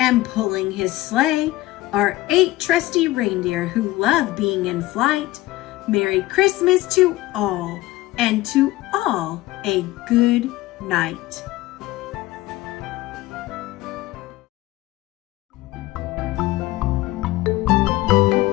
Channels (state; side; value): quieter; right; 17.8 dB